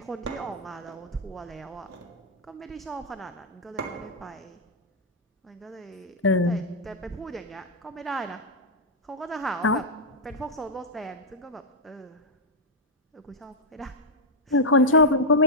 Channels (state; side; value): normal; both; correlation -0.03